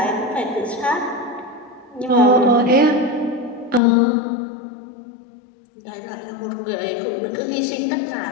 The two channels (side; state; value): right; drops out; at 3.8 s